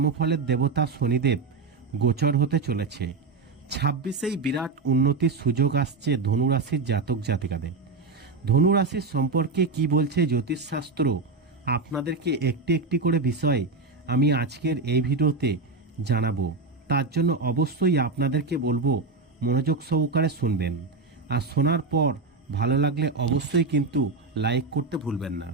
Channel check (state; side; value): quieter; left; 4.0 dB